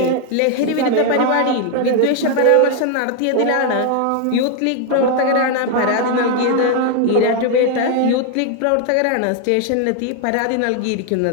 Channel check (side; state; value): both; different; correlation 0.01